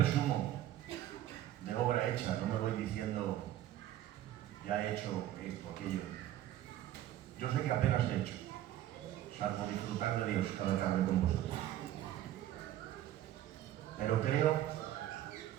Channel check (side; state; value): left; quieter; 12.9 dB